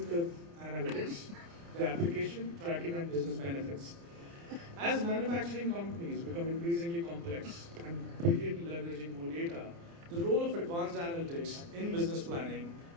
analytics, the application, tracking, and business benefits. As manufacturing companies become increasingly complex and begin leveraging more data, the role of advanced analytics in business planning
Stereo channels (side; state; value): left; late; 29 ms